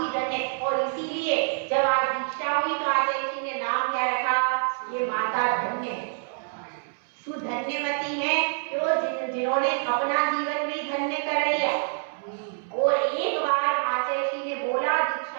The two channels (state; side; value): silent; left; 61 dB below the other